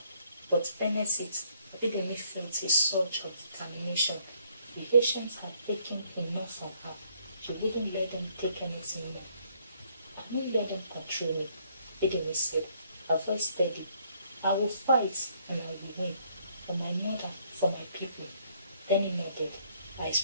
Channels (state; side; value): inverted; both; correlation -0.68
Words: but beneath it, Abidemi felt a surge of determination. The ancients had taken enough from her. She wouldn't let them take anything more. I won't let them control me, Abidemi said, her voice steady. I will fight and I will win, for my mother, for my people. Then he nodded, her